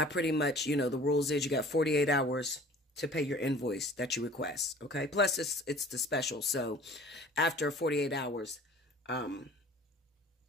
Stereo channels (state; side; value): normal; both; correlation 0.47